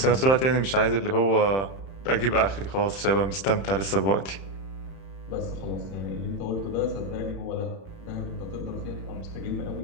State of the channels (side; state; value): right; late; 31 ms